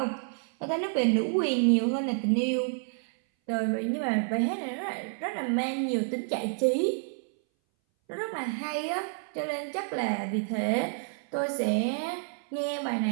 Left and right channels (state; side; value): silent; left; 58 dB below the other